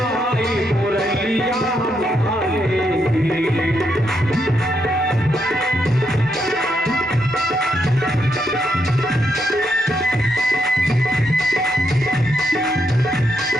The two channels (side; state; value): both; normal; correlation 0.79